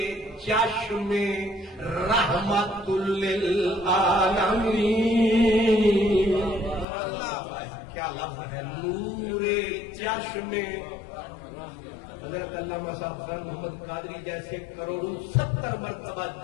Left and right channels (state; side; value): drops out; right; at 6.9 s